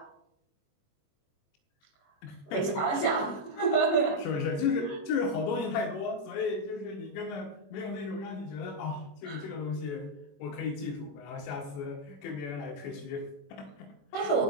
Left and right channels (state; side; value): late; right; 21 ms